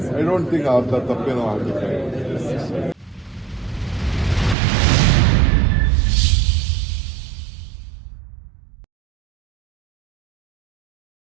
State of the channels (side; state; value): left; drops out; at 4.5 s